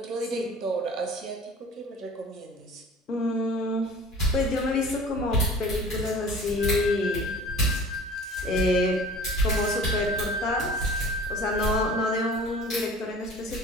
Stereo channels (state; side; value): normal; both; correlation 0.44